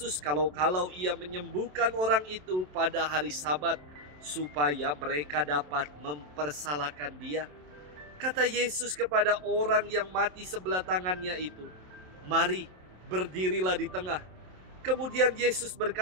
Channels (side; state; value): left; late; 27 ms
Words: kalau-kalau ia menyembuhkan orang itu pada hari Sabat, supaya mereka dapat mempersalahkan dia. Kata Yesus kepada orang yang mati sebelah tangannya itu, "Mari, berdirilah di tengah." Kemudian Yesus